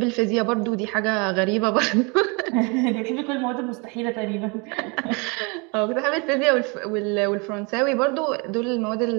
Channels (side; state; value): left; quieter; 30.8 dB